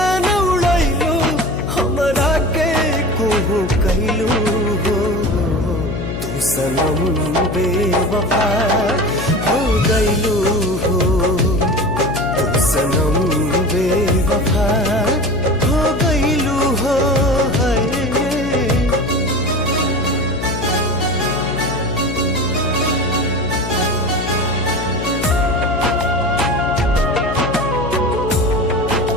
उड़ैलू, हमरा के कुहू कैलू हो। तू सनम बेवफा हो गइलू हो। तू सनम बेवफा हो गइलू हो।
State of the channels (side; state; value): left; noise; hum, 5 dB below the sound